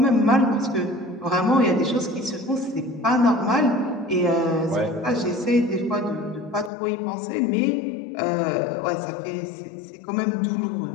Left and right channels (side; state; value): right; drops out; at 6.7 s